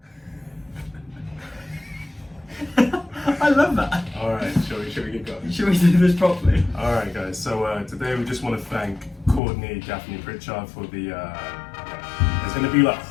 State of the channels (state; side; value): drops out; right; at 9.4 s